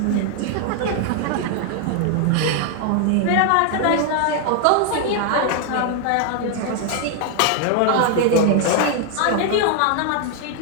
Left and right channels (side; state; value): both; different; correlation 0.00